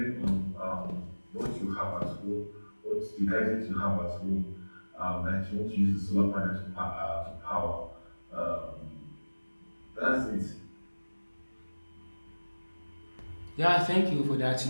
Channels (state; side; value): inverted; both; correlation -1.00